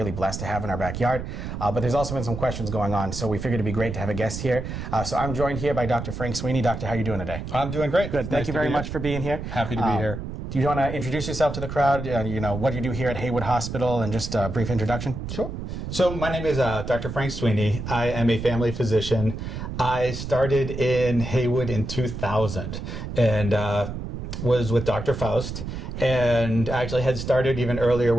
blessed to have in our backyard, but there's also been some questions going on, so we figured it'd be great to have a guest here. So I'm joined here by Dr. Frank Sweeney. Doctor, how are you doing today? I'm doing great. Good. Thank you very much for being here. Happy to be here. Do you want to introduce yourself to the crowd, what you do here at Haywood Hospital, and just a brief introduction? Sure. So my name is Dr. Frank Sweeney. I am a family physician. I started in Haywood in 2000 and was with Dr. Faust, and actually had started even earlier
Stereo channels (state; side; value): noise; right; rumble, 7 dB below the sound